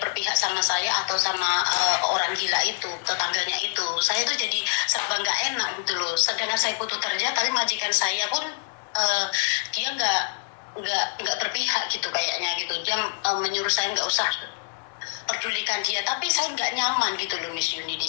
berpihak sama saya atau sama orang gila itu, tetangganya itu. Saya tuh jadi serba nggak enak gitu loh. Sedangkan saya butuh kerja, tapi majikan saya pun dia nggak berpihak gitu kayaknya gitu. Dia menyuruh saya nggak usah pedulikan dia, tapi saya nggak nyaman gitu loh Miss Yuni di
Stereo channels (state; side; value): silent; right; 61 dB below the other